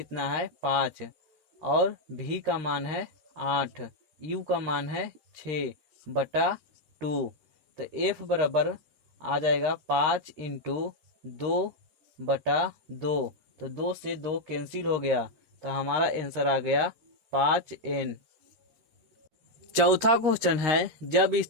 है? 5 और v का मान है 8, u का मान है 6 बटा 2। तो f बराबर आ जाएगा 5 इंटू 2 बटा 2। तो 2 से 2 कैंसिल हो गया, तो हमारा आंसर आ गया 5n। चौथा क्वेश्चन है, जब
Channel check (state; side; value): late; left; 13 ms